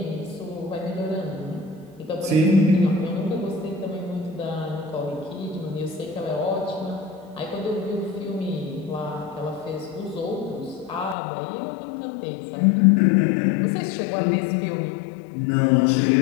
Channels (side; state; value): right; drops out; at 11.2 s